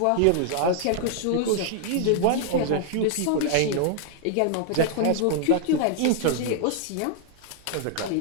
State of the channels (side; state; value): both; different; correlation 0.00